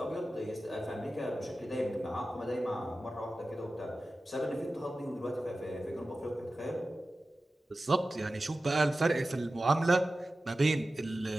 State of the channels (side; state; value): both; normal; correlation 0.95